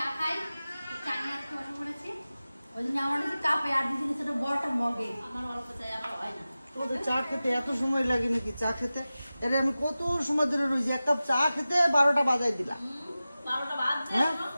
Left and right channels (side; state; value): both; inverted; correlation -0.96